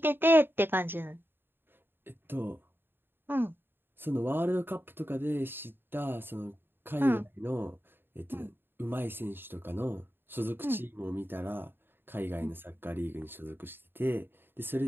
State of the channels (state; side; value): late; left; 0.10 ms